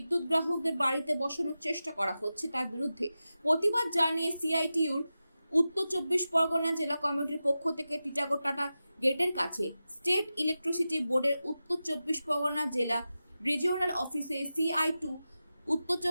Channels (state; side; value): inverted; both; correlation -0.93